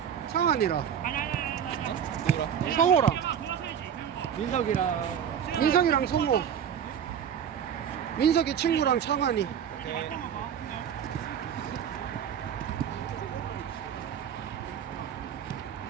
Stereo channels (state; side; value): quieter; left; 8.5 dB